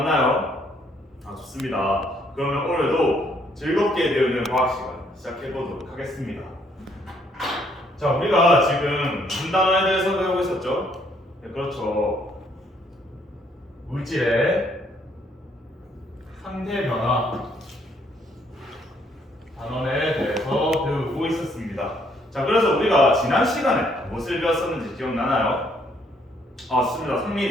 좋습니다. 그러면 오늘도 즐겁게 배우는 과학 시간 시작해 보도록 하겠습니다. 자, 우리가 지금 무슨 단어에 대해서 배우고 있었죠? 네, 그렇죠. 물질의 상태 변화 단원에 대해서 배우고 있었습니다. 자, 그래서 우리가 지난 시간에 무엇을 배웠었는지 기억나나요? 맞습니다.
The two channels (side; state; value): both; normal; correlation 0.68